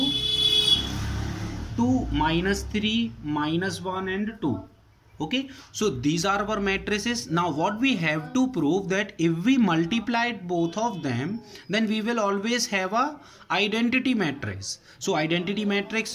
2, minus 3, minus 1 and 2. Okay, so these are our matrices. Now what we have to prove, that if we multiplied both of them, then we will always have a identity matrix. So identity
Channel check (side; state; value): both; identical; correlation 1.00